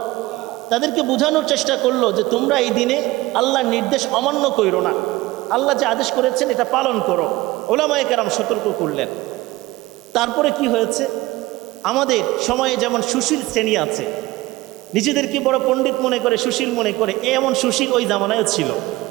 তাদেরকে বোঝানোর চেষ্টা করলো যে তোমরা এই দিনে আল্লাহর নির্দেশ অমান্য করো না, আল্লাহ যে আদেশ করেছেন এটা পালন করো। ওলামায়ে কেরাম সতর্ক করলেন। তারপরে কি হয়েছে, আমাদের সময়ে যেমন সুশীল শ্রেণী আছে, নিজেদেরকে বড় পণ্ডিত মনে করে, সুশীল মনে করে, এমন সুশীল ওই জামানায়ও ছিল।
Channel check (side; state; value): left; quieter; 19.0 dB